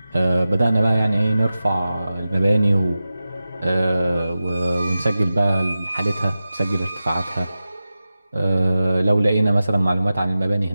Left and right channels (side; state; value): both; inverted; correlation -0.94